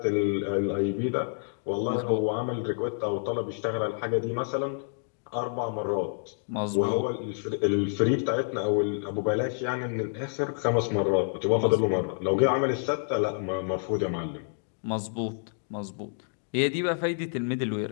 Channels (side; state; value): right; silent; digital silence